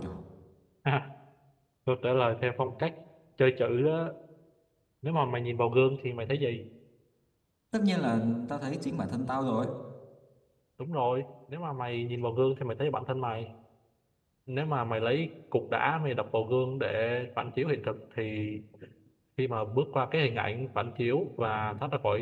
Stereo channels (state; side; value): identical; both; correlation 1.00